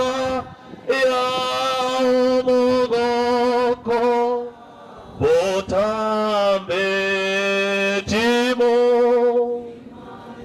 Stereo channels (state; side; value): identical; both; correlation 1.00